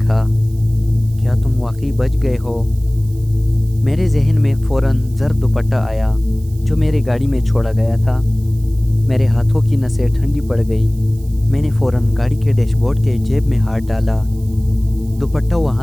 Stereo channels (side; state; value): right; noise; hiss, 25 dB below the sound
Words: کیا تم واقعی بچ گئے ہو؟ میرے ذہن میں فوراً زرد دوپٹہ آیا جو میری گاڑی میں چھوڑا گیا تھا۔ میرے ہاتھوں کی نسیں ٹھنڈی پڑ گئی۔ میں نے فوراً گاڑی کے ڈیش بورڈ کے جیب میں ہاتھ ڈالا۔ دوپٹہ